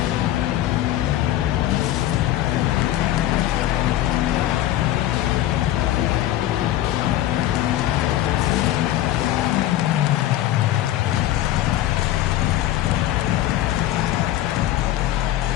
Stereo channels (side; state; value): right; quieter; 13.7 dB